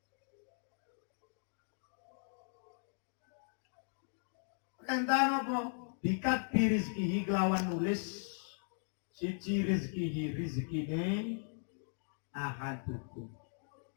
Perintah nopo? Bikat birizkihi kelawan nulis siji rizkine ahadukum.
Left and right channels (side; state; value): right; silent; digital silence